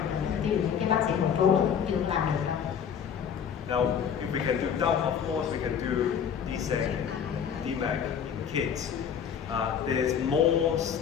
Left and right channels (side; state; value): right; quieter; 7.8 dB